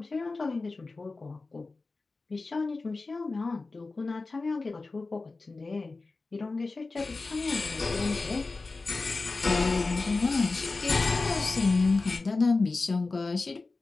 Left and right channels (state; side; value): quieter; right; 3.7 dB